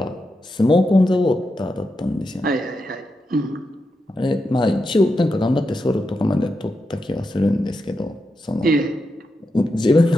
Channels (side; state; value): both; normal; correlation 0.87